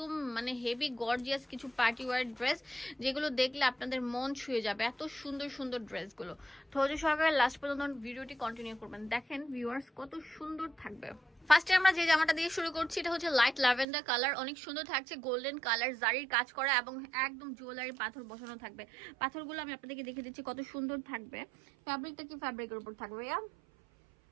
মানে হেভি গর্জিয়াস কিছু পার্টি ওয়্যার ড্রেস, যেগুলো দেখলে আপনাদের মন ছুঁয়ে যাবে। এত সুন্দর সুন্দর ড্রেসগুলো। ধৈর্য সহকারে লাস্ট পর্যন্ত ভিডিওটি কন্টিনিউ করবেন। দেখেন ভিউয়ার্স কত সুন্দর থাকবে। ফার্স্টে আমরা যে জামাটা দিয়ে শুরু করছি, এটা হচ্ছে লাইট ল্যাভেন্ডার কালার। অনেক সুন্দর থাকছে, গোল্ডেন কালার, জারির কাজ করা এবং একদম জুয়েলারি পাথর বসানো থাকবে। পাথরগুলো আমি আপনাদেরকে দেখে দিচ্ছি কত সুন্দর থাকবে। ফ্যাব্রিকটা কি ফ্যাব্রিকের উপর থাকবে?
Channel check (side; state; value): left; drops out; at 13.9 s